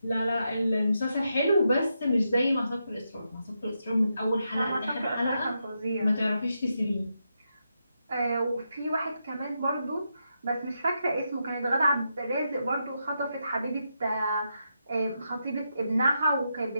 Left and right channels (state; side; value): inverted; both; correlation -0.84